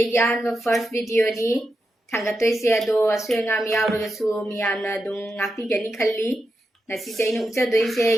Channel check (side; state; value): both; normal; correlation 0.87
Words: ꯑꯍꯥꯟꯕ ꯐꯥꯔꯁ ꯚꯤꯗꯤꯑꯣꯅꯤ ꯊꯥꯡꯒꯠꯇꯣꯏꯁꯦ ꯑꯗꯣ ꯑꯁꯣꯏ ꯑꯉꯥꯝ ꯌꯥꯎꯔꯒꯁꯨ ꯃꯤꯌꯥꯝꯅ ꯑꯗꯨꯝ ꯉꯥꯛꯄꯤꯒꯅꯤ ꯈꯜꯂꯤ ꯉꯁꯤꯁꯦ ꯑꯩꯅ ꯎꯠꯆꯗꯣꯏꯁꯦ